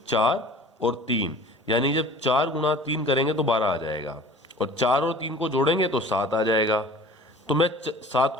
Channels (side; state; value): both; normal; correlation 0.44